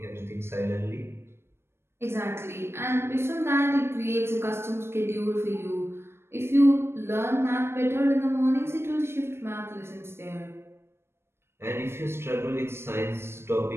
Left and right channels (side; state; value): left; late; 0.12 ms